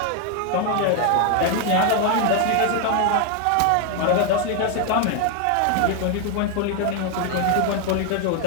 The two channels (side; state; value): both; different; correlation 0.01